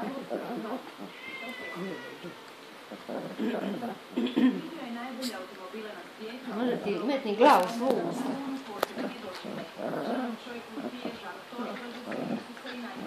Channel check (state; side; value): identical; both; correlation 1.00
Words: Može ti metni glavu svu usta.